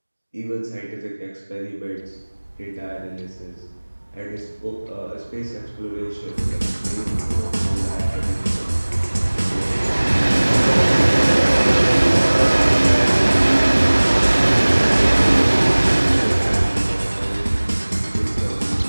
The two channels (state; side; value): inverted; both; correlation -1.00